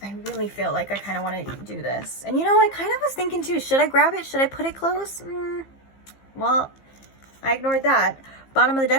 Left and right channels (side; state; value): right; late; 15 ms